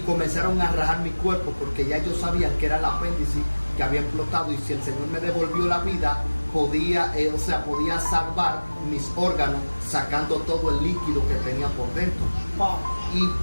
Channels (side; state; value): both; inverted; correlation -1.00